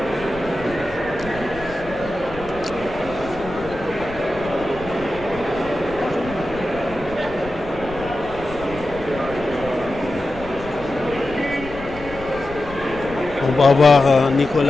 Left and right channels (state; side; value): noise; left; rumble, 15 dB below the sound